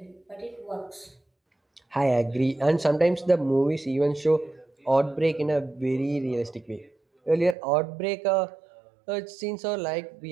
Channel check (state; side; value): drops out; left; at 7.6 s